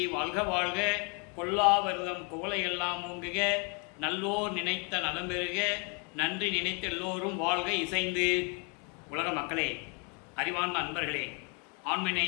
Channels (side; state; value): right; quieter; 34.2 dB